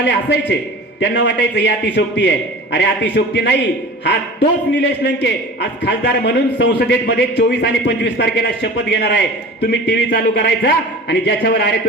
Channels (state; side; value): normal; both; correlation 0.38